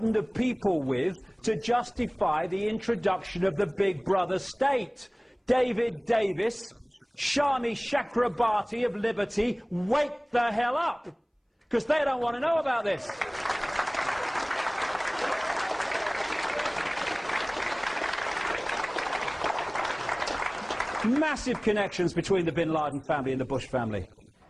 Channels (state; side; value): identical; both; correlation 1.00